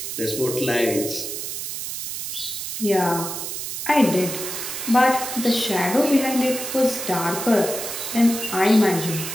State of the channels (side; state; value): right; noise; hiss, 6 dB below the sound